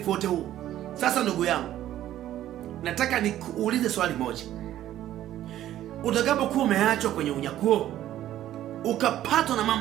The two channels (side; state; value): left; quieter; 12.7 dB